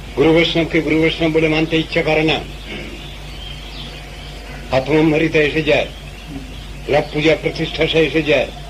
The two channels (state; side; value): identical; both; correlation 1.00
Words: গুরু বৈষ্ণবকে গুরু বৈষ্ণব বলে মানতে ইচ্ছা করে না, আত্মম্ভারিতা এসে যায়, লাভ পূজা প্রতিষ্ঠা সে এসে যায়,